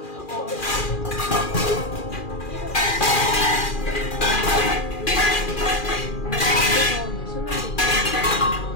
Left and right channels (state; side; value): late; right; 2.4 ms